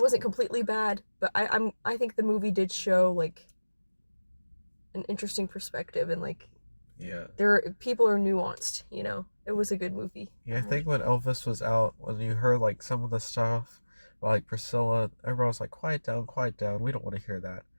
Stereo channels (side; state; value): both; inverted; correlation -1.00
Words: completely bad, but I think the movie did show like an interesting perspective and like Yeah. people are nuanced, you know. It was a good movie. Yeah, I think when Elvis was out, when you heard like some of the stuff, like Priscilla, everyone was like, quiet down. We don't want to hear that.